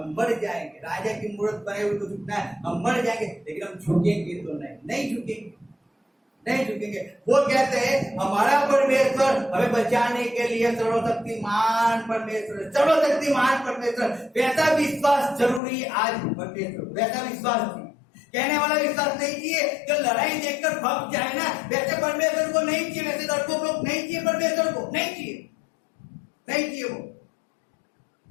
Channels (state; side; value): drops out; right; at 15.6 s